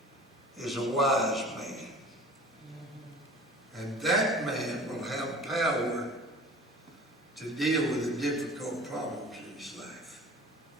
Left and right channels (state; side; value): normal; both; correlation 0.43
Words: is a wise man. And that man will have power to deal with the difficult problems in his life.